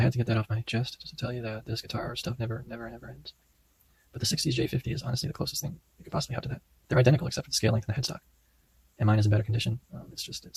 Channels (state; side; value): identical; both; correlation 1.00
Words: had to get that off my chest just to tell you that this guitar stuff never ends. But the 60s J50 is honestly the closest thing you could possibly have to that. They're identical except for the scale length and the headstock. And mine is in better condition.